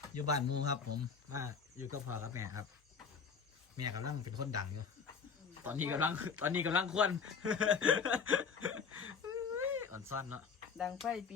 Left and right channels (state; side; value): quieter; right; 5.9 dB